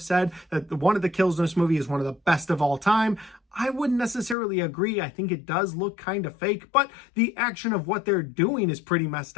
said that one of the kills in this movie is one of the best of all time. I wouldn't necessarily agree. I think it does look kind of fake, but the action of what they're doing is pretty messed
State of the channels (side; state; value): right; drops out; at 4.4 s